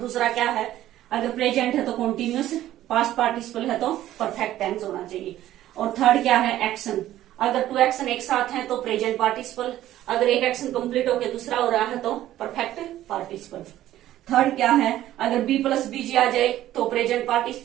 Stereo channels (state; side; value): quieter; left; 13.5 dB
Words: क्या है, अगर प्रेजेंट है तो कॉन्टिन्यूस, पास्ट पार्टिसिपल है तो परफेक्ट टेंस होना चाहिए। और थर्ड क्या है, एक्शन, अगर टू एक्शन एक साथ हैं तो प्रेजेंट पार्टिसिपल, अगर एक एक्शन कंप्लीट होकर दूसरा हो रहा है तो परफेक्ट पार्टिसिपल। थर्ड क्या है, अगर B प्लस BG आ जाए तो present